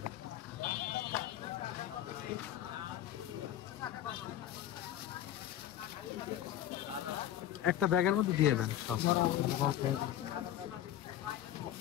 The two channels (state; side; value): quieter; right; 11.9 dB